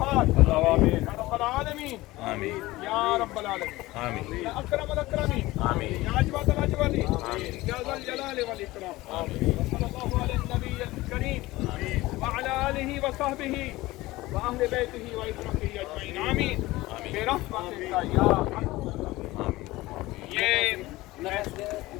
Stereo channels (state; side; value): quieter; right; 18.9 dB